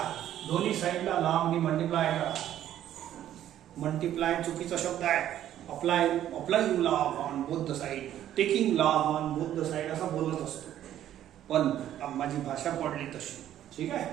दोन्ही साइडला लॉग ने मल्टिप्लाय करा. मल्टिप्लाय चुकीचा शब्द आहे. Applying log on both the side, taking log on both the side असं बोलत असतो, पण माझी भाषा पडली तशी. ठीक आहे.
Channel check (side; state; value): left; quieter; 11.7 dB